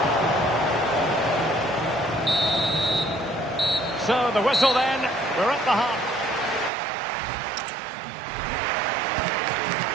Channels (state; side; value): drops out; left; at 6.7 s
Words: So the whistle then. We're at the half.